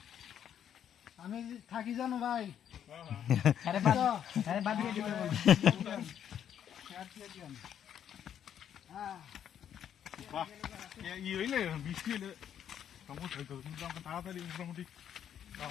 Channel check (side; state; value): right; quieter; 9.4 dB